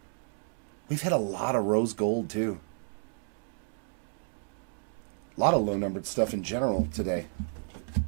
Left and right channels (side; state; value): left; silent; digital silence